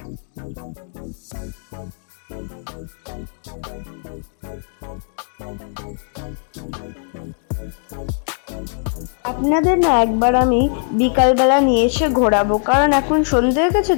আপনাদের না একবার আমি বিকালবেলা নিয়ে এসে ঘোরাবো, কারণ এখন সন্ধে হয়ে গেছে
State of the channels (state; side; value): silent; right; 58 dB below the other